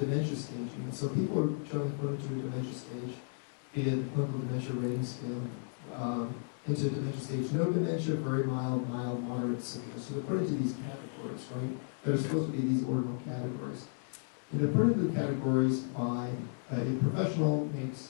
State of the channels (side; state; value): right; silent; digital silence